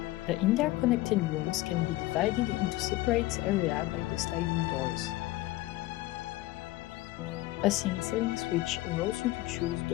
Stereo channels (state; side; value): quieter; right; 17.9 dB